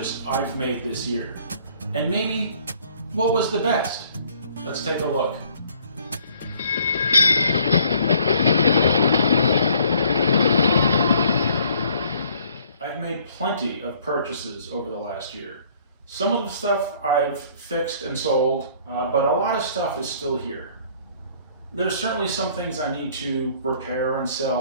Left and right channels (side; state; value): both; inverted; correlation -0.59